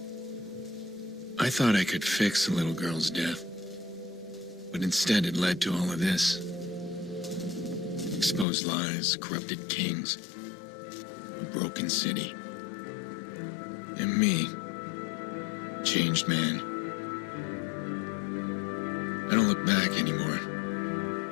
I thought I could fix the little girl's death, but instead it led to all of this. Exposed lies, corrupted kings, a broken city. And me, changed man. I don't look back anymore.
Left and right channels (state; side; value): drops out; right; at 8.5 s